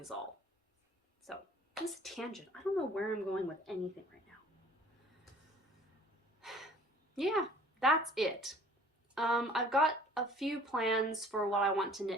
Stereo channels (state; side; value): normal; both; correlation 0.51